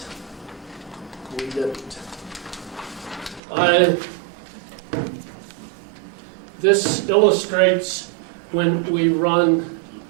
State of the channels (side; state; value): left; drops out; at 3.4 s